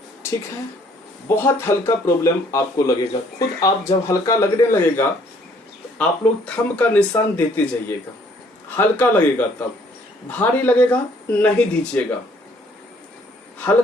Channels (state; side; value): normal; both; correlation 0.62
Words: ठीक है। बहुत हल्का प्रॉब्लम आपको लगेगा, खुद आप जब हल्का लगने लगेगा तो आप लोग थंब का निशान देते जाइएगा। हल्का लगेगा तब, भारी लगेगा नहीं दीजिएगा,